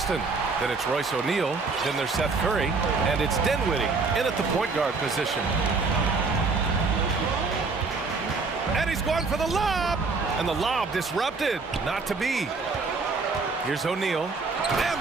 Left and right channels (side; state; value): left; quieter; 4.2 dB